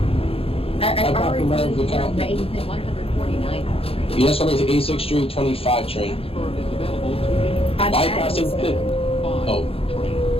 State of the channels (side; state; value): right; late; 0.27 ms